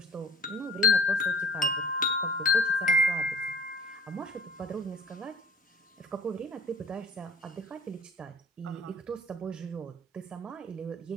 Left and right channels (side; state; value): both; normal; correlation 0.47